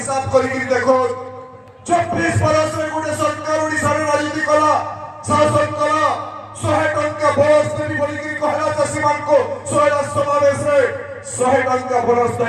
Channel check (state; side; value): identical; both; correlation 1.00